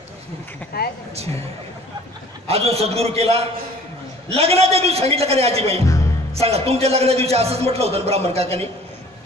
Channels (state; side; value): normal; both; correlation 0.50